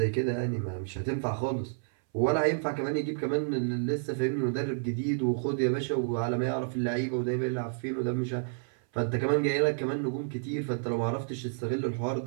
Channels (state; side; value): silent; left; 58 dB below the other